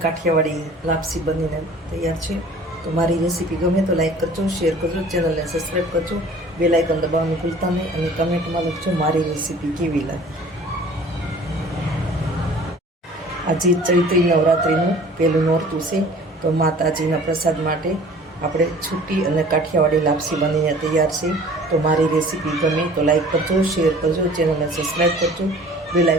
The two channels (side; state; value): both; normal; correlation 0.48